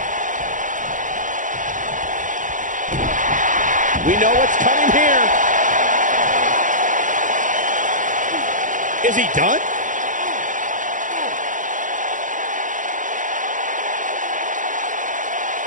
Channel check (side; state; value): left; late; 0.37 ms